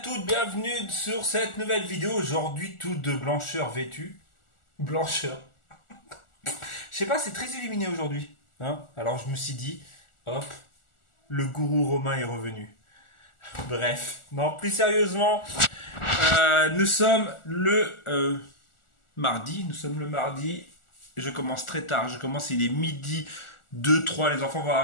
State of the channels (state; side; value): late; right; 1.4 ms